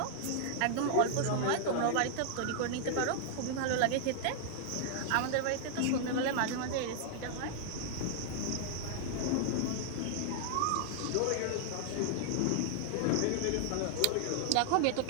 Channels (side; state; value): both; different; correlation 0.00